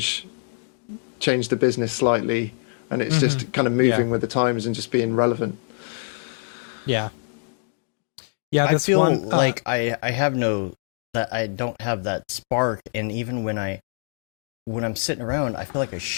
the business slightly, and it's just kind of moving with the times and just being relevant. I feel like I don't have that spark, and even when I'm sitting around, I feel like I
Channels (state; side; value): silent; right; digital silence